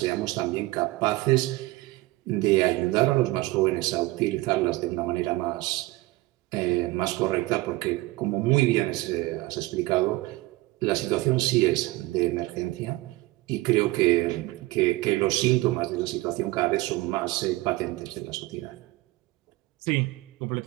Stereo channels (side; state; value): left; quieter; 19.8 dB